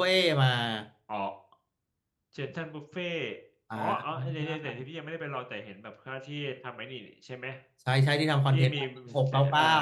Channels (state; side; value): identical; both; correlation 1.00